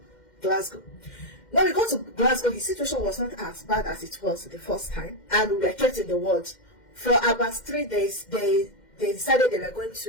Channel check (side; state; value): right; late; 2.1 ms